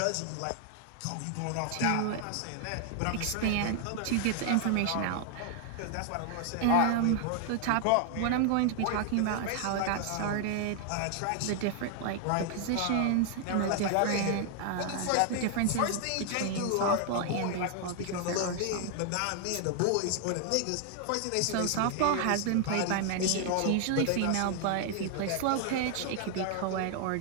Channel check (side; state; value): both; different; correlation 0.00